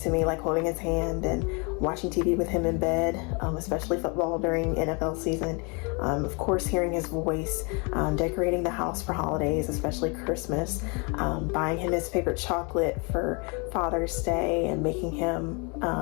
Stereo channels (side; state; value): right; quieter; 32.4 dB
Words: me, like holding his hand and watching TV with him in bed, especially football during NFL season. Of course, hearing his voice, decorating the house for holidays, especially Christmas, buying him his favorite chocolate for Father's Day, and making him